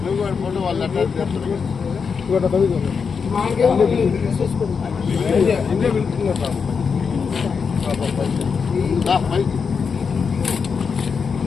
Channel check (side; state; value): right; quieter; 5.8 dB